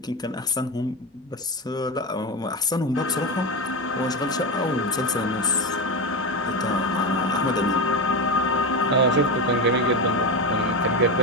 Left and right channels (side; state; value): both; normal; correlation 0.16